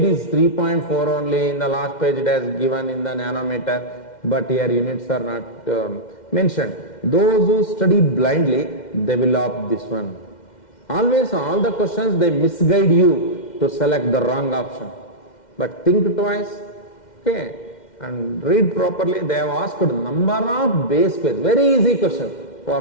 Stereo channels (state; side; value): late; right; 2.1 ms